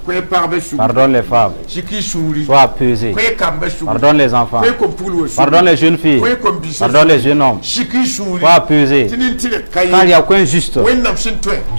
Pardonne les femmes. Sois apaisé. Pardonne les enfants. Pardonne les jeunes filles. Pardonne les jeunes hommes. Sois apaisé. Car il n'y a aucun juste.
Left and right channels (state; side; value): inverted; both; correlation -1.00